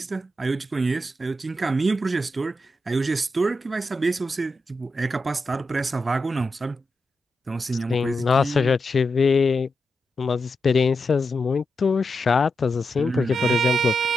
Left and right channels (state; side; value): normal; both; correlation 0.87